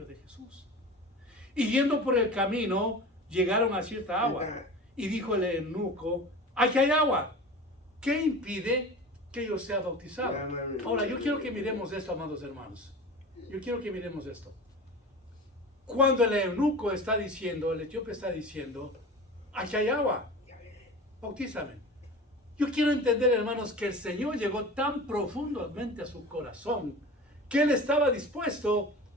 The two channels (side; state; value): both; normal; correlation 0.35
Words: de Jesús. Y yendo por el camino, llegaron a cierta agua. Y dijo el eunuco, aquí hay agua. ¿Qué impide que yo sea bautizado? Ahora, yo quiero que miremos esto, amados hermanos. Yo quiero que miremos esto. Cuando el eunuco está diciendo, el etíope está diciendo, aquí hay agua, bautízame. Yo quiero entender, hermanos, que el Señor llegó tan profundamente a su corazón que Él estaba dispuesto